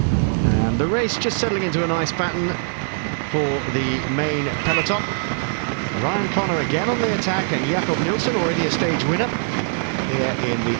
And the race just settling into a nice pattern for the main peloton. Ryan Connor again on the attack, and Jakob Nielsen, already a stage winner here in the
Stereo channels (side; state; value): left; silent; digital silence